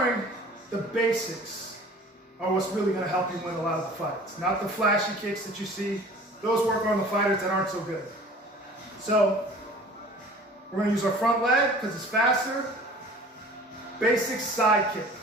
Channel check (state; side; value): normal; both; correlation 0.46